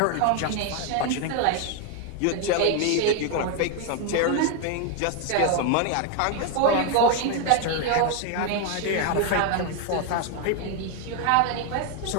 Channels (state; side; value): different; both; correlation 0.01